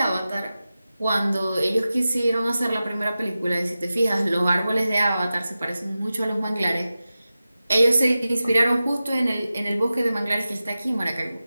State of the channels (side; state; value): both; inverted; correlation -0.94